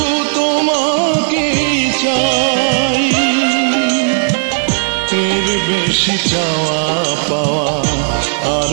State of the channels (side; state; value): left; silent; digital silence